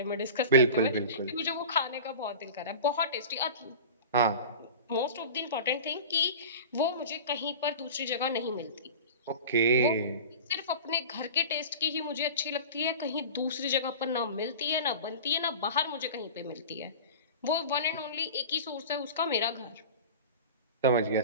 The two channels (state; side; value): inverted; both; correlation -0.34